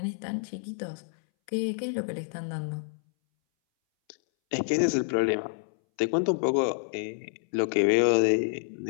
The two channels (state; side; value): silent; right; 59 dB below the other